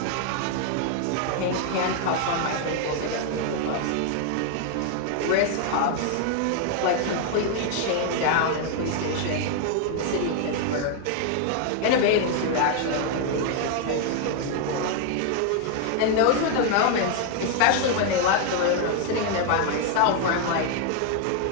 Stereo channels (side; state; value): both; different; correlation 0.00